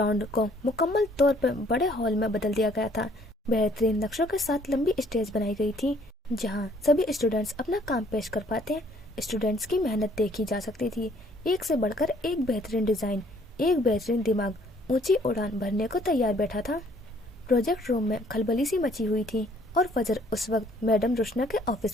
को मुकम्मल तौर पर बड़े हॉल में बदल दिया गया था। बेहतरीन नक्शों के साथ लंबी स्टेज बनाई गई थी जहां सभी स्टूडेंट्स अपना काम पेश कर पाते। स्टूडेंट्स की मेहनत देखी जा सकती थी। एक से बढ़कर एक बेहतरीन डिजाइन, एक बेहतरीन दिमाग ऊंची उड़ान भरने को तैयार बैठा था। प्रोजेक्ट रूम में खलबली सी मची हुई थी, और फजर उस वक्त मैडम रुशना के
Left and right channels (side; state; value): both; normal; correlation 0.61